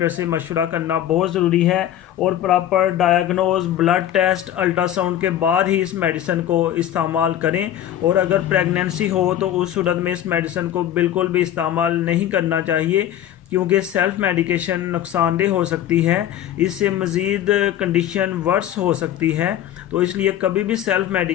से मशवरा करना बहुत ज़रूरी है और proper diagnose, blood test, ultrasound के बाद ही इस मेडिसिन को इस्तेमाल करें। और अगर प्रेगनेंसी हो तो उस सूरत में इस मेडिसिन को बिल्कुल भी इस्तेमाल नहीं करना चाहिए क्योंकि सेल्फ़ मेडिकेशन नुकसानदेह हो सकती है, इससे मज़ीद कंडीशन वर्स हो सकती है। तो इसलिए कभी भी सेल्फ़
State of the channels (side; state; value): right; quieter; 11.5 dB